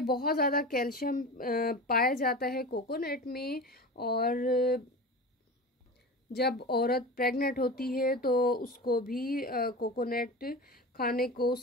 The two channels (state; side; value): normal; both; correlation 0.30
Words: बहुत ज़्यादा कैल्शियम पाया जाता है कोकोनट में, और जब औरत प्रेग्नेंट होती है तो उसको भी कोकोनट खाने को,